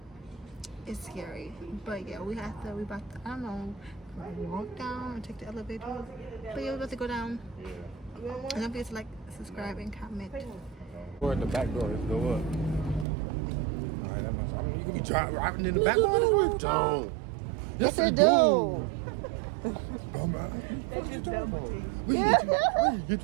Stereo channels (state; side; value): drops out; left; at 13.1 s